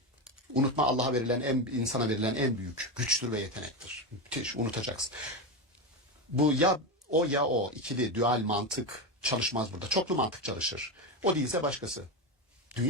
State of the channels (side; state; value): both; normal; correlation 0.15